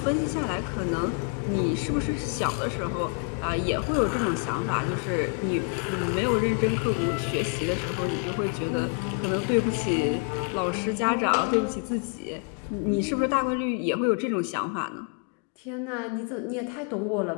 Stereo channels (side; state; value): right; quieter; 38.3 dB